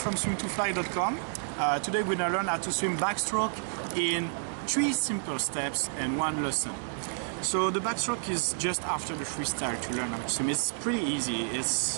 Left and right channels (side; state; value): left; silent; digital silence